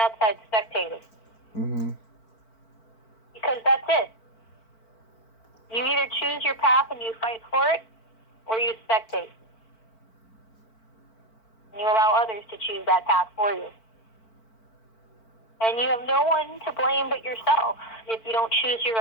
outside spectating? Mm-hmm. Because that's it. You either choose your path and you fight for it, or you spectate. And you allow others to choose that path for you. And you have no one to blame but yourself if you don't choose your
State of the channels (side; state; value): right; late; 4.5 ms